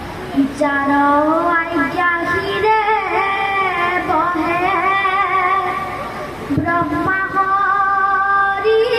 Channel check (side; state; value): left; noise; hum, 25 dB below the sound